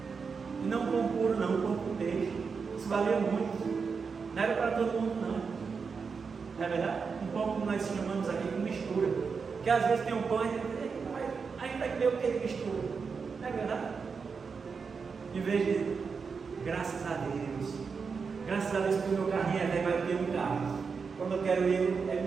E não um pão puro, não, um pão com peixe. Isso valia muito. Não era para todo mundo, não. Não é verdade? Um pão como nós chamamos aqui de mistura. Porque às vezes tem um pão e a gente vai comer o que de mistura. Não é verdade? Em vez de graças a Deus. Graças a Deus que o meu carrinho é velho, vai ter um carro. Quando eu quero ir, ele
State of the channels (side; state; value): left; quieter; 5.4 dB